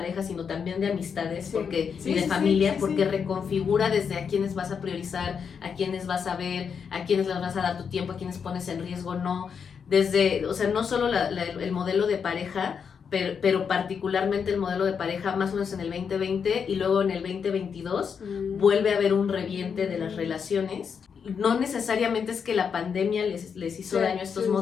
sino también de amistades, y de familia, porque reconfigura desde a quiénes vas a priorizar, a quiénes vas a ver, a quiénes les vas a dar tu tiempo, a quiénes pones en riesgo, no. Desde, o sea, no solo el modelo de pareja, pero particularmente el modelo de pareja más o menos en el 2020, y luego en el 2022 vuelve a haber un reviente de las relaciones. No necesariamente es que la pandemia les hizo daño a estos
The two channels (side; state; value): right; quieter; 6.6 dB